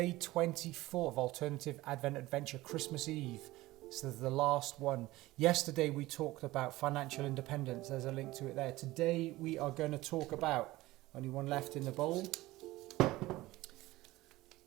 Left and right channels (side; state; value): left; quieter; 18.4 dB